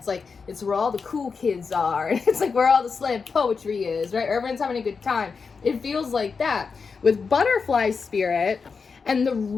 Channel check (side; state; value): right; quieter; 5.2 dB